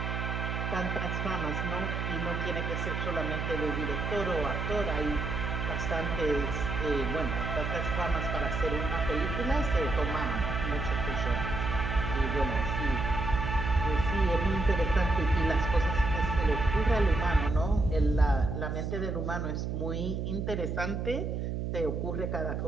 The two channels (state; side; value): noise; right; hum, 2 dB below the sound